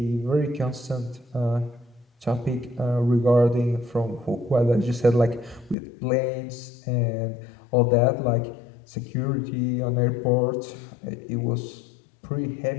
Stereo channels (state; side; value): drops out; right; at 5.8 s